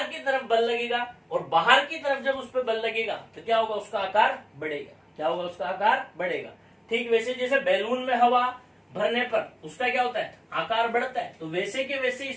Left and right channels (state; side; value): identical; both; correlation 1.00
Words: की तरफ बल लगेगा, और बाहर की तरफ जब उस पर बल लगेगा तो क्या होगा, उसका आकार बढ़ेगा। क्या होगा, उसका आकार बढ़ेगा। ठीक वैसे जैसे बैलून में हवा भरने पर उसका क्या होता है, आकार बढ़ता है, तो वैसे के वैसे